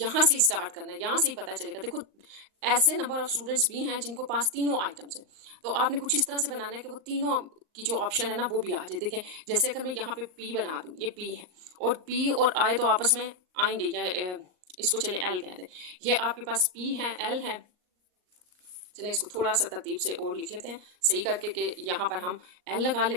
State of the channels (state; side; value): late; left; 39 ms